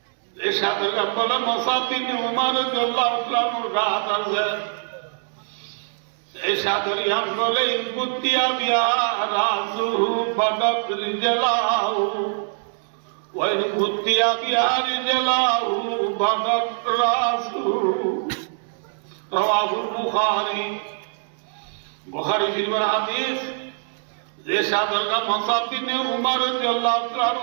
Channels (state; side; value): silent; left; digital silence